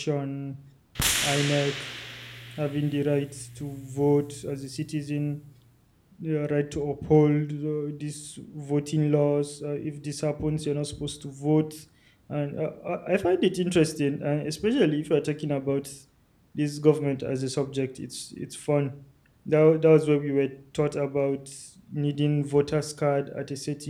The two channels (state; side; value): identical; both; correlation 1.00